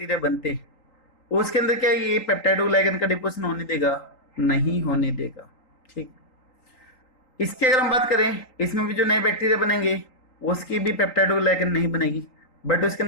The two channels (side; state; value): right; late; 3.9 ms